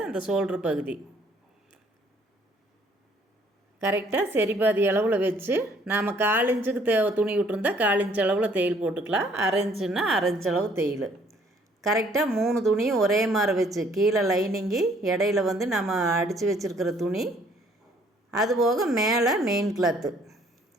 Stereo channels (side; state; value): both; normal; correlation 0.62